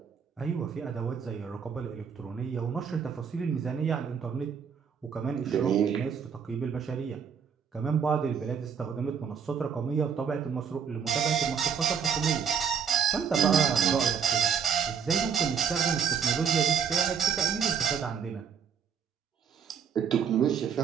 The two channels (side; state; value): left; quieter; 7.1 dB